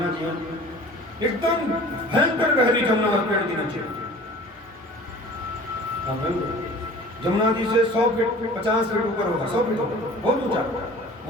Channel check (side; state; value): both; normal; correlation 0.44